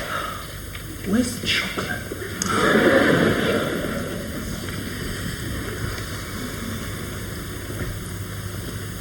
Where's the chocolate?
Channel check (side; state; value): both; identical; correlation 1.00